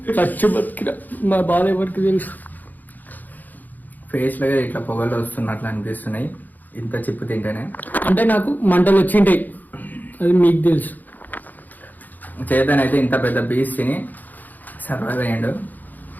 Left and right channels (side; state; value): right; late; 0.084 ms